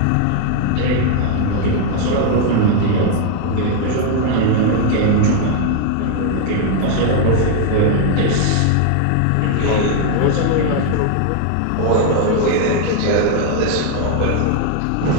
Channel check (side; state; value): both; different; correlation 0.00